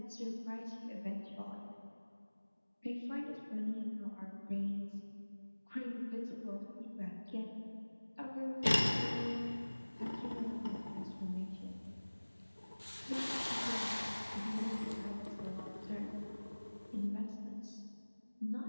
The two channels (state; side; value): inverted; both; correlation -1.00